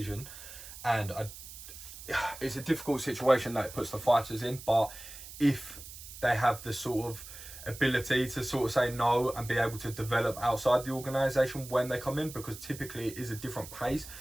And it's a difficult situation that it puts the fighters in, but if they have the sort of ability to sort of say no and be able to develop outside the organisation when they come in, because typically it is a different pace,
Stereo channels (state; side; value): noise; right; hiss, 14 dB below the sound